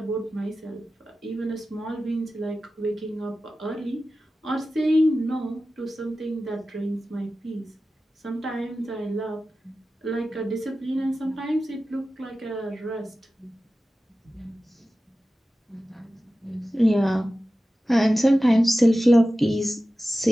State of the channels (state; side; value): normal; both; correlation 0.94